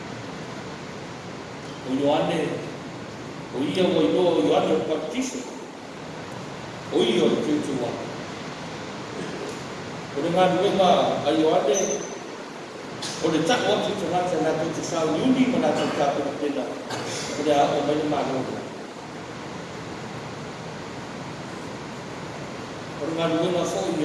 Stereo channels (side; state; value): both; identical; correlation 1.00